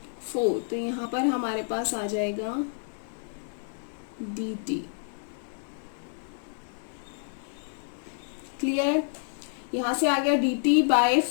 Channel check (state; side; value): silent; right; 59 dB below the other